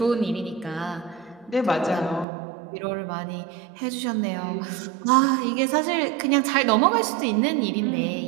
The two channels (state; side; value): drops out; left; at 2.2 s